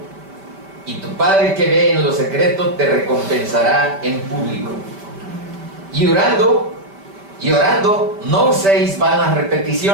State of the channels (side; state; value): left; late; 5.1 ms